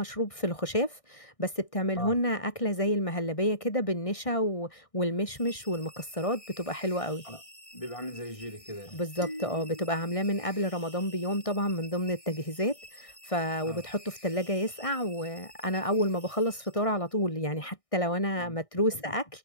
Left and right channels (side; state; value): right; late; 1.6 ms